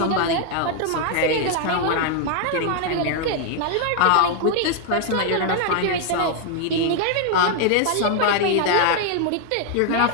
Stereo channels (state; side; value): different; both; correlation 0.00